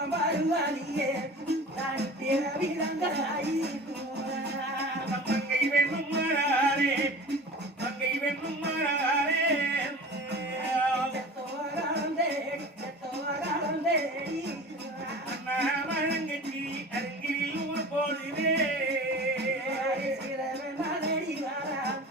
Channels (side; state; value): both; normal; correlation 0.38